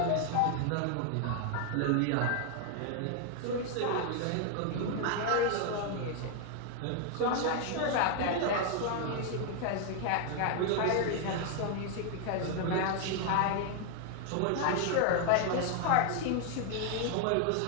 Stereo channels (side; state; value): both; different; correlation 0.00